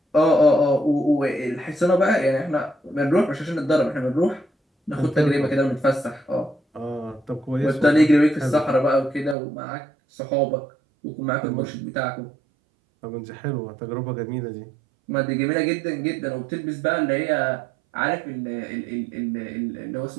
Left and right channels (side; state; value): left; drops out; at 9.3 s